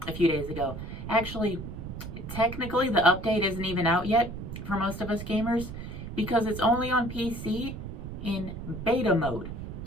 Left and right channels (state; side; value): noise; right; rumble, 8 dB below the sound